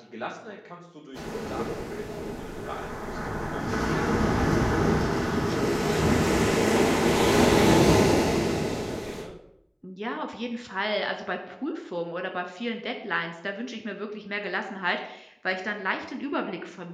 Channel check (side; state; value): both; identical; correlation 1.00